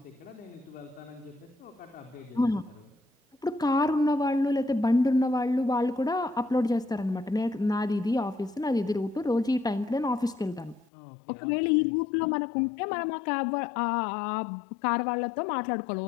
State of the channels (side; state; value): right; drops out; at 10.9 s